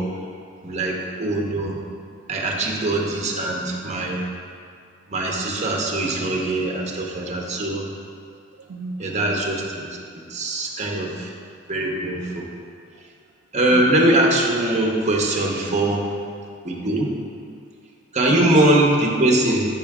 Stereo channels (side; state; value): both; normal; correlation 0.38